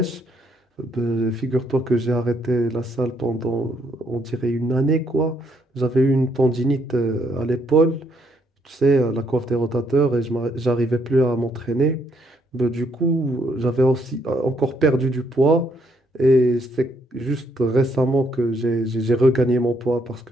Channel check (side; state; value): both; normal; correlation 0.72